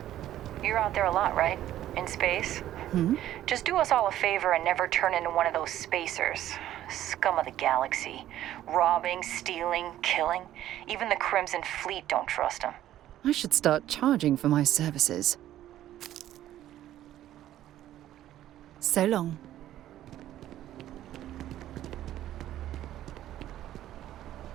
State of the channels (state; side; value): quieter; left; 12.8 dB